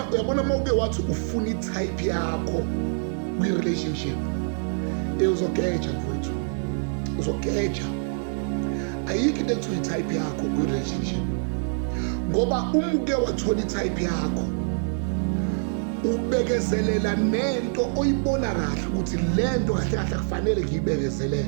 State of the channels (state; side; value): silent; left; digital silence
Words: mawuke wathi ufuna i-type yakho kwi-relationship, uzogeja mfowethu, uzogeja. Ayikho into ekuthiwa i-type yakho kwi-relationship, ngoba umuke wathola i-type yakho ubekezelela nento oyibona kahle ukuthi lento kahle kahle kufanele